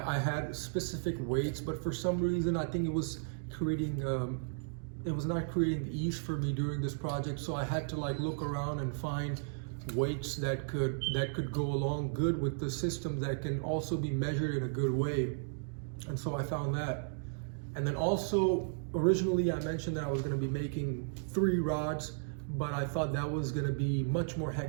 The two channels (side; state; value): left; silent; digital silence